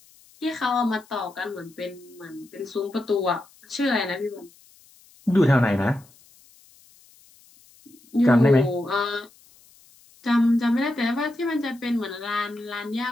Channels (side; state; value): left; noise; hiss, 28 dB below the sound